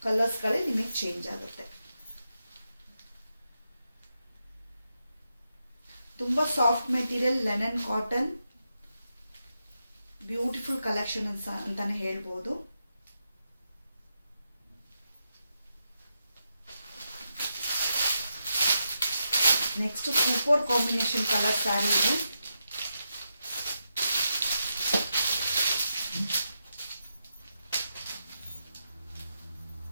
ಕಲರ್ಸ್ಗಳೇ ನಿಮಗೆ ಚೇಂಜ್ ಆಗುತ್ತೆ. ತುಂಬಾ soft material, linen cotton, beautiful collection ಅಂತಾನೆ ಹೇಳ್ಬೋದು. Next super combination colour sari ಇದೆ.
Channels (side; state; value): both; inverted; correlation -0.86